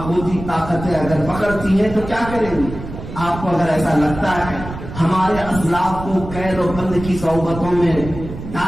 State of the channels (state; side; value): noise; right; rumble, 10 dB below the sound